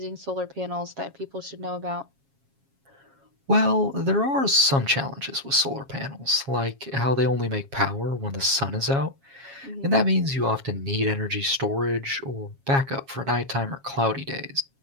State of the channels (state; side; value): late; left; 7.3 ms